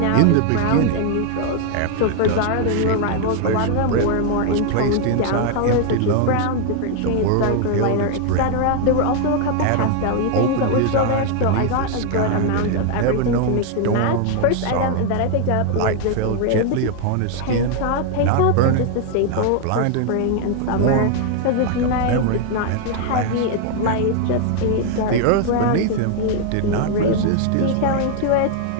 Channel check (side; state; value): both; different; correlation 0.00